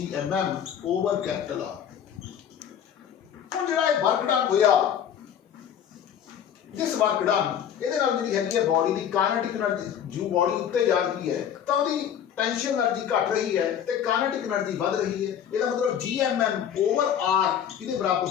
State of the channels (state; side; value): quieter; right; 9.0 dB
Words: over capital r ਹੁਣ ਜਿਹੜਾ ਇਹ ਵਰਕ ਡਨ ਹੋਇਆ ਜਿਸ ਵਰਕ ਡਨ ਇਹਦੇ ਨਾਲ ਜਿਹੜੀ ਹੈਗੀ ਹੈ ਬਾਡੀ ਦੀ ਕਾਇਨੈਟਿਕ એનર્ਜੀ ਜੋ ਬਾਡੀ ਉੱਤੇ ਜਾ ਰਹੀ ਹੈ ਤਾਂ ਉਹਦੀ टेंशन एनर्जी घट रही है तो काइनेटिक एनर्जी बढ़ रही है इसका मतलब gmm ओवर r किसके बराबर